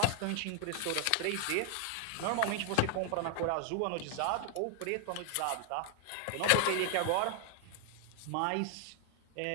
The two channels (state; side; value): different; both; correlation 0.00